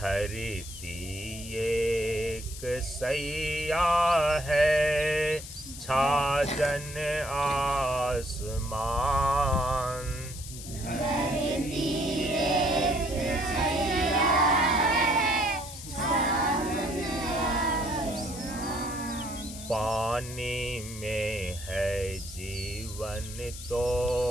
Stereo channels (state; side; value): noise; left; hiss, 12 dB below the sound